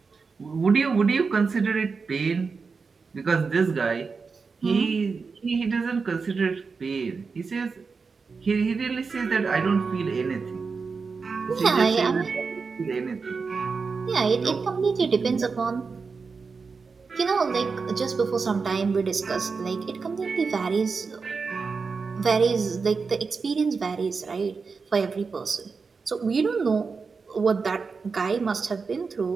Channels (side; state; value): left; quieter; 4.9 dB